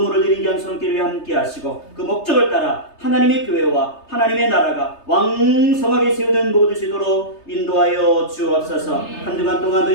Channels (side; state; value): right; late; 3.3 ms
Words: 드린 양손길에 함께 하시고 그 목적을 따라 하나님의 교회와 하나님의 나라가 왕성하게 세우는 모든 시도로 인도하여 주옵소서. 한 주간 동안도